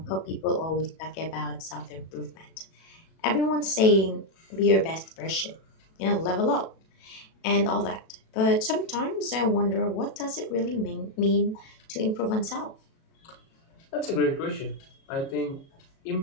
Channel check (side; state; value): right; late; 37 ms